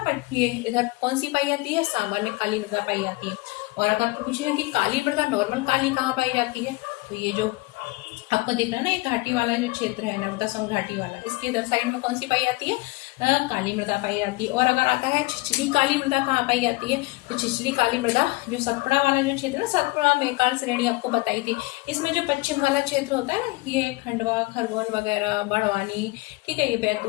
ये इधर कौन सी पाई जाती है? सामान्य काली मृदा पाई जाती है। और अगर पूछे कि काली मृदा, नॉर्मल काली कहाँ पाई जाती है, तो ये जो आपको दिख रहा है ना, ये घाटी वाला जो क्षेत्र है, नर्मदा सोन घाटी वाला, इसके इधर साइड में कौन सी पाई जाती है? काली मृदा पाई जाती है। और अगर आता है छिछली काली मृदा, कहाँ पाई जाती है? तो छिछली काली मृदा जो सतपुड़ा वाला जो क्षेत्र है, सतपुड़ा मेकाल श्रेणी आपको बताई थी, इसमें जो पश्चिम वाला क्षेत्र होता है ना, ये खंडवा, खरगोन वगैरह, बड़वानी, ठीक है, ये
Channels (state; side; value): quieter; right; 23.4 dB